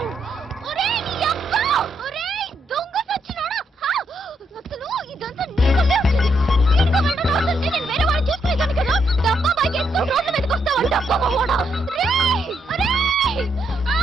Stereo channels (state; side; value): normal; both; correlation 0.77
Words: ఒరేయ్, నీ అబ్బా. ఒరేయ్, దొంగ సచ్చినోడా. అసలు ఇదంతా నీకల్లే వచ్చింది. నీకు వెళ్ళడం రాదంటే నేను వేరే వాడిని చూసుకునేదాన్ని కదా. డబ్బా బైక్ వేసుకుని రోడ్ల మీదకి వస్తావు. డబ్బా మగవాడా. రేయ్, ఒరేయ్,